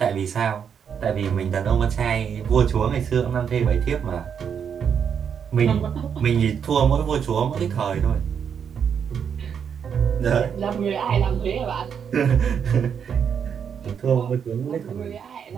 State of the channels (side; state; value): left; quieter; 7.5 dB